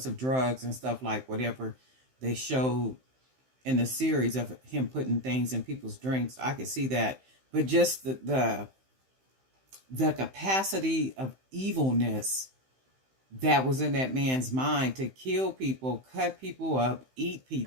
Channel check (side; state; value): left; late; 15 ms